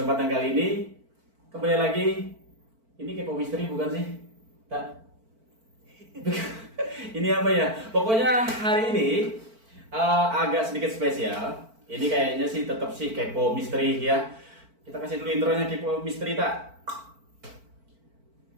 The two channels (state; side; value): late; left; 4.5 ms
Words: kali ini kembali lagi. Ini kepo misteri bukan sih? Tak. Ini apa ya? Pokoknya hari ini agak sedikit spesial. Ini kayaknya sih tetap sih kepo misteri ya. Kita kasih dulu intronya kepo misteri tak?